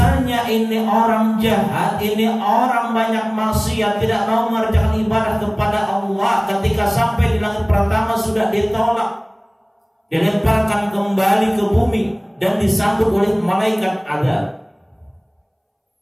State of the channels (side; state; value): both; identical; correlation 1.00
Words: ini orang jahat, ini orang banyak maksiat, tidak mau mengerjakan ibadah kepada Allah, ketika sampai di langit pertama sudah ditolak, dilemparkan kembali ke bumi dan disambut oleh malaikat adab.